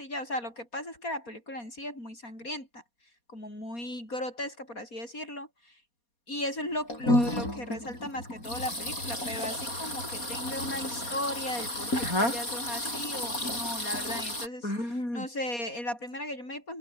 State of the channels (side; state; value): right; late; 4.2 ms